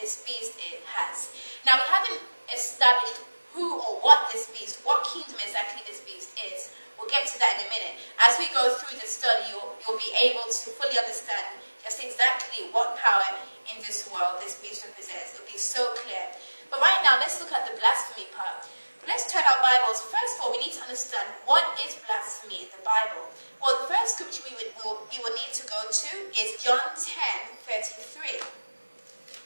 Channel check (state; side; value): inverted; both; correlation -1.00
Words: beast has. Now, we haven't established who or what this beast, what kingdom exactly this beast is. We'll get to that in a minute. As we go through the study, you'll be able to fully understand just exactly what power in this world this beast represents. It'll be so clear. But right now, let's look at the blasphemy part. But let's turn our Bibles. First of all, we need to understand what is blasphemy in the Bible. Well, the first scripture we will need to go to is John 10:33.